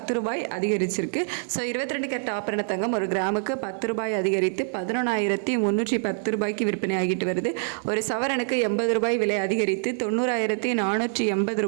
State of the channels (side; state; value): left; silent; 61 dB below the other